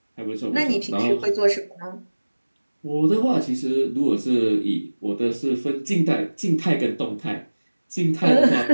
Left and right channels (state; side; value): inverted; both; correlation -1.00